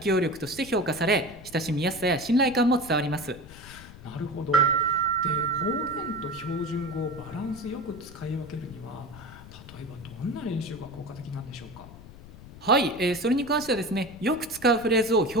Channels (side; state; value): left; noise; rumble, 17 dB below the sound